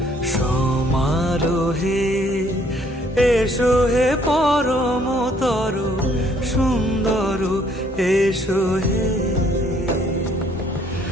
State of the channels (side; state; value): both; normal; correlation 0.64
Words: সমারোহে এসো হে পরমতর সুন্দর এসো হে